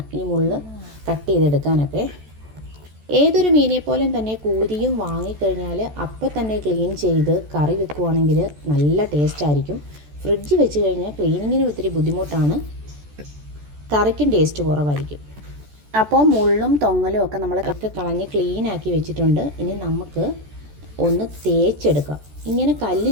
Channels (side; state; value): left; late; 14 ms